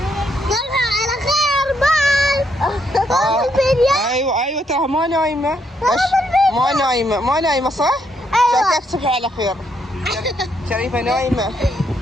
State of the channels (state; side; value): normal; both; correlation 0.75